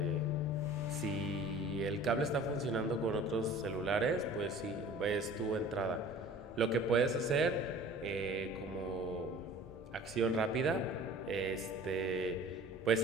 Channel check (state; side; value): normal; both; correlation 0.45